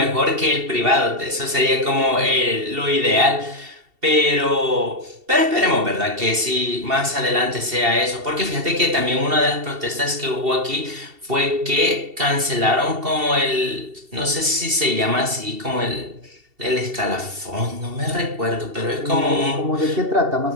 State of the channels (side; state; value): left; late; 2.7 ms